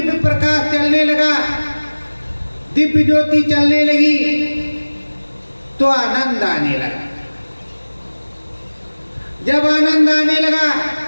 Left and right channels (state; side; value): inverted; both; correlation -1.00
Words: प्रकाश चलने लगा, दिव्य ज्योति चलने लगी, तो आनंद आने लगा। जब आनंद आने लगा